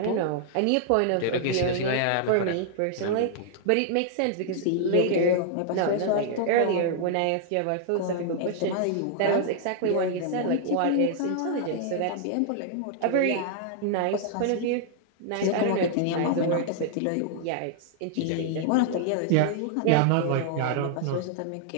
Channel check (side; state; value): both; different; correlation -0.01